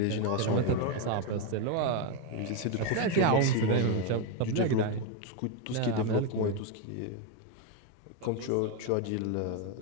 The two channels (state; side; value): different; both; correlation 0.02